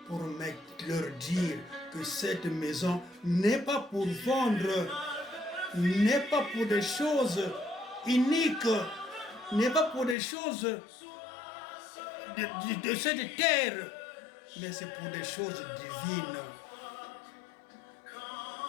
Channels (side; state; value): right; drops out; at 10.2 s